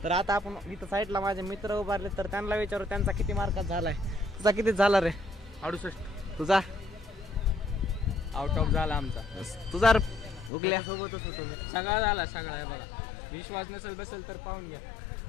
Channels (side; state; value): right; drops out; at 10.5 s